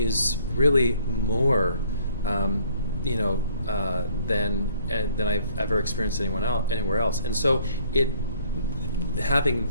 really more, than I've ever experienced anywhere else. And so having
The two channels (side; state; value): both; inverted; correlation -0.61